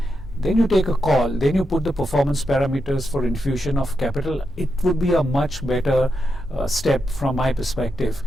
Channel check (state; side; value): normal; both; correlation 0.85